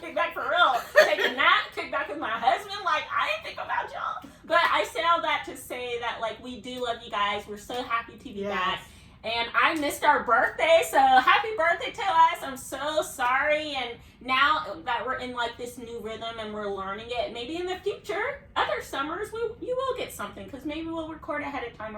kick back for real. Take a nap, kick back with my husband. Like, I didn't think about y'all. But I say all that to say that, like, we do love you guys. We're so happy to be back. And I missed our birthday, so happy birthday to us. I'm so sorry. And now that we're in, like, this new rhythm and we're learning it, maybe in the future, other summers, you will get something, because maybe we'll record ahead of time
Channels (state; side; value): identical; both; correlation 1.00